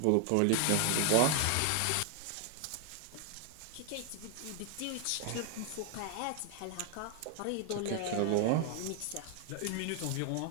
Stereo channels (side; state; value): both; different; correlation 0.01